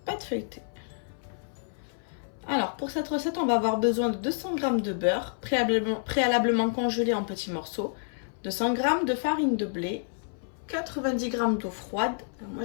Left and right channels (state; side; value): silent; right; 59 dB below the other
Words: Pâte feuilletée. Alors, pour cette recette, on va avoir besoin de 200 g de beurre, préalablement congelé en petits morceaux, 200 g de farine de blé, 90 g d'eau froide. Alors